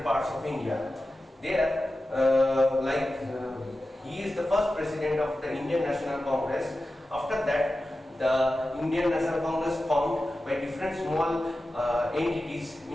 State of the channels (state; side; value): normal; both; correlation 0.93